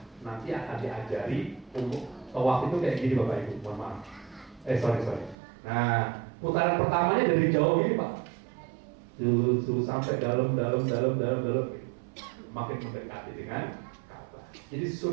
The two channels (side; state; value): left; drops out; at 5.4 s